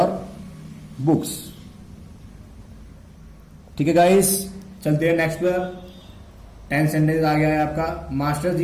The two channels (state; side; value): identical; both; correlation 1.00